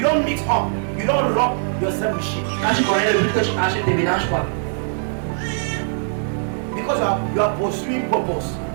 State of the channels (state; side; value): silent; left; digital silence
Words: don't mix up. You don't rub yourself with shit. Quand tu connais le but que tu achètes, ne mélange pas. Because you are pursuing purpose.